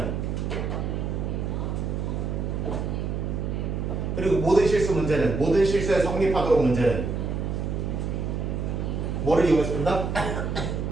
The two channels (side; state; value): right; noise; hum, 2 dB below the sound